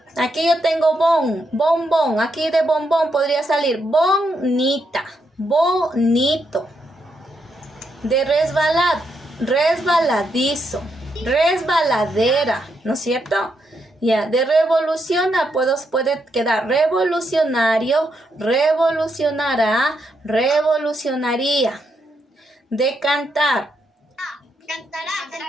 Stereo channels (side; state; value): both; normal; correlation 0.80